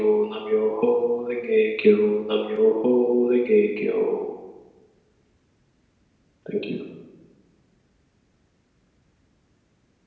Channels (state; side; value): identical; both; correlation 1.00